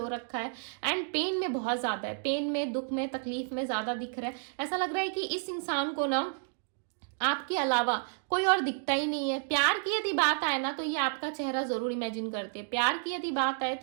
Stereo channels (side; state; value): left; silent; digital silence